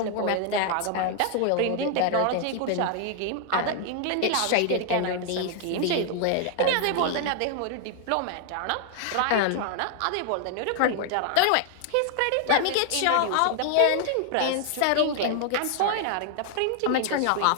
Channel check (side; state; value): both; different; correlation 0.00